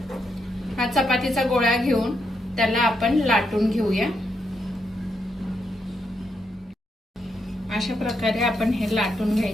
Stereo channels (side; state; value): both; normal; correlation 0.81